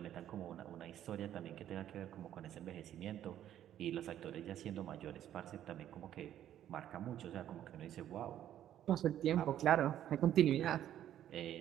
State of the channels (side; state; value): left; quieter; 11.3 dB